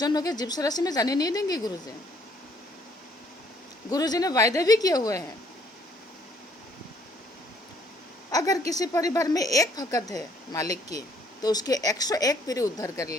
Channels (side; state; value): both; normal; correlation 0.64